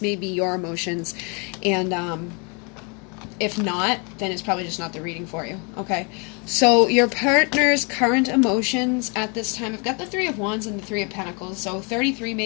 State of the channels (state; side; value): quieter; right; 33.5 dB